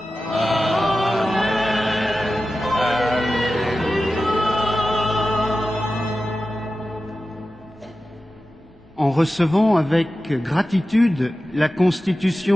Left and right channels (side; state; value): both; normal; correlation 0.94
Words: En recevant avec gratitude la